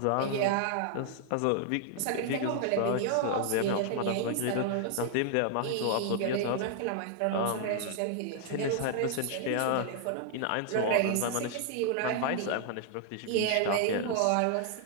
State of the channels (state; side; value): different; both; correlation 0.00